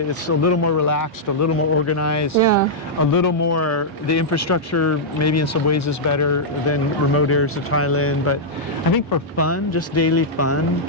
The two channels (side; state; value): both; normal; correlation -0.08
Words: It's a little more relaxed, a little more organized, a little more, the infrastructure maybe in some ways is better than remote areas of Thailand, but I think for fun, just daily fun,